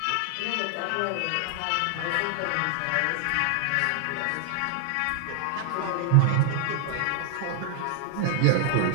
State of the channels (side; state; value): both; different; correlation 0.00